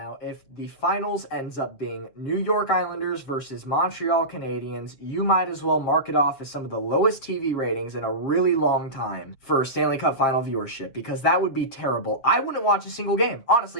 if the finals ends up being New York Islanders versus Montreal Canadiens, you might as well mark it off as some of the lowest TV ratings in a really long time for Stanley Cup final viewership, because that would be terrible. I wouldn't watch a single game.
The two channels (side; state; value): right; late; 7.3 ms